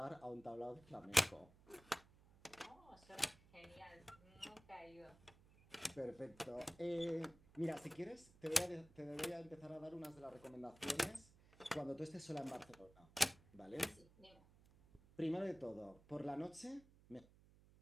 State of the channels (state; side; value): noise; right; hum, 24 dB below the sound